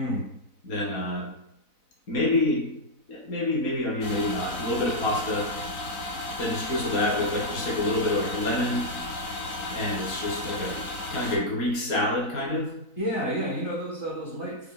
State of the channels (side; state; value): right; late; 4.0 ms